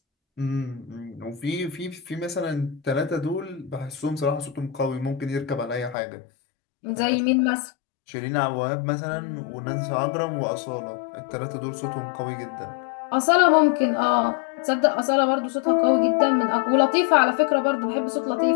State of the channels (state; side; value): drops out; right; at 6.0 s